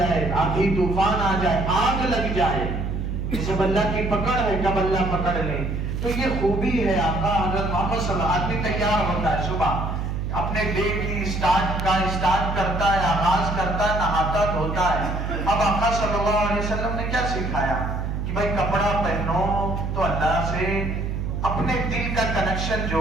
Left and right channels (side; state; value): right; noise; hum, 3 dB below the sound